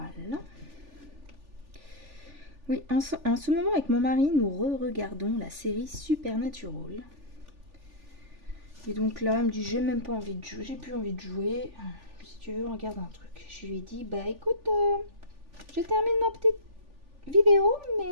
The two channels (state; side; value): late; left; 3.4 ms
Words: Oui, en ce moment, avec mon mari, nous regardons la série Supernatural. Et donc là, il me dit, j'ai même pas envie de jouer, j'ai plus envie de jouer. Si tu veux, on regarde un truc. Je lui ai dit, bah écoute, je termine ma petite vidéo,